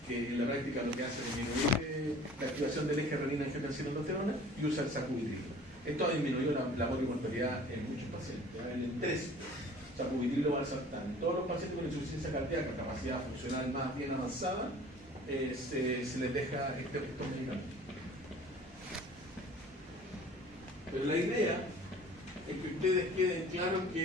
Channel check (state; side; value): normal; both; correlation 0.47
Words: que en la práctica lo que hace es disminuir la activación del eje renina-angiotensina-aldosterona, y usa el sacubitrilo. Esto ha disminuido la morbimortalidad en muchos pacientes. En el 3, sacubitrilo valsartán. Todos los pacientes con insuficiencia cardíaca, capacidad funcional más bien avanzada, se les deja estos medicamentos. Pero la idea es que ustedes queden claros